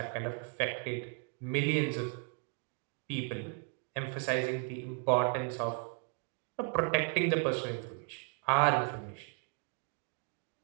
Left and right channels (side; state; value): left; quieter; 38.2 dB